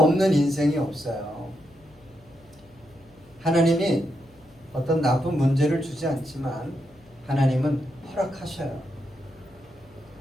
인생이 없어요. 하나님이 어떤 나쁜 문제를 주지 않지만 하나님은 허락하셔요.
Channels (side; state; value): left; noise; hum, 28 dB below the sound